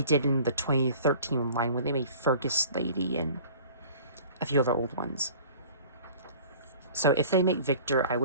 in the 2013 line when they made Fergus Lady and a few other old ones. So if they make Victor, I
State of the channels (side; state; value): both; inverted; correlation -0.46